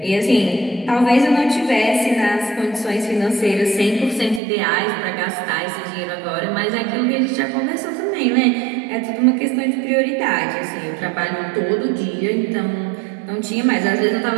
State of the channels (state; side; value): drops out; left; at 4.4 s